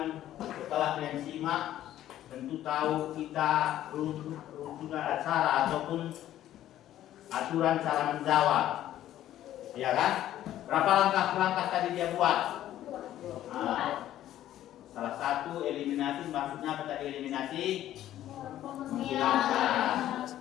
setelah kalian simak tentu tahu kita rujukan acara ataupun aturan cara menjawab, ya kan? Berapa langkah tadi dia buat? Nah, salah satu eliminasi, maksudnya apa tadi eliminasi? Menghilangkan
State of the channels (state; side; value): quieter; right; 12.7 dB